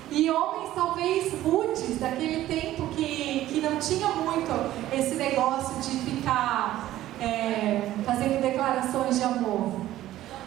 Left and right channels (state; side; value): quieter; left; 14.2 dB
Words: E homens talvez rudes, daquele tempo que não tinha muito esse negócio de ficar fazendo declarações de amor.